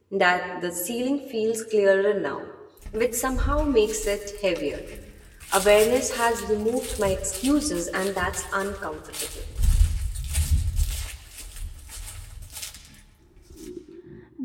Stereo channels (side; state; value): both; identical; correlation 1.00